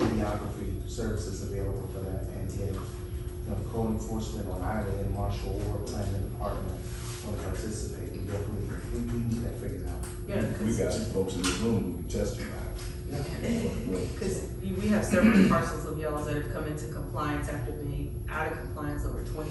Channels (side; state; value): both; identical; correlation 1.00